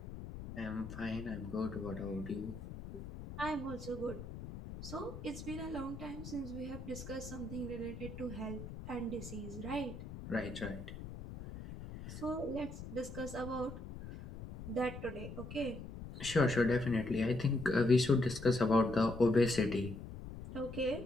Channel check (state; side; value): noise; left; rumble, 10 dB below the sound